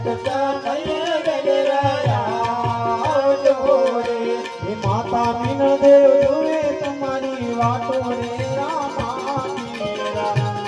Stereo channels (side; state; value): both; identical; correlation 1.00